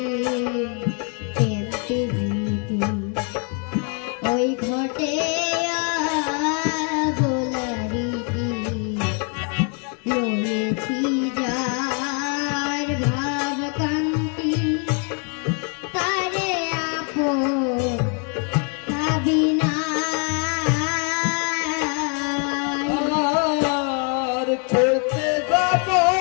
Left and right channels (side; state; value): right; quieter; 39.4 dB